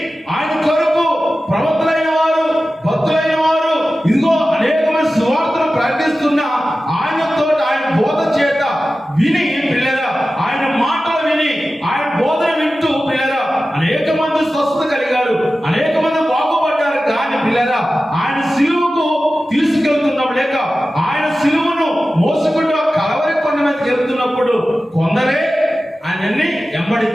ఆయన కొరకు ప్రవక్తలైన వారు, భక్తులైన వారు ఇదిగో అనేకమైన సువార్తలు ప్రకటిస్తున్న ఆయనతో, ఆయన బోధ చేత విని పిల్లరా, ఆయన మాటలు విని, ఆయన బోధన వింటూ పిల్లరా అనేక మంది స్వస్థత కలిగారు, అనేక మంది బాగుపడ్డారు. కానీ పిల్లరా ఆయన సిలువకు తీసుకెళ్తున్నాం లేక ఆయన సిలువను మోసుకుంటూ కలవరి కొండ మీదకి వెళ్తున్నప్పుడు కొందరే ఆయన్ని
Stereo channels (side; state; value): both; normal; correlation 0.95